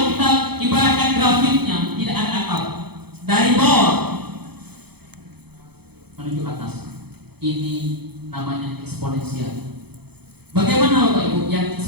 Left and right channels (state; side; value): late; left; 0.97 ms